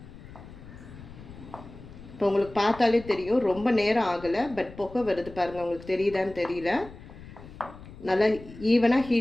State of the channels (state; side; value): noise; left; rumble, 17 dB below the sound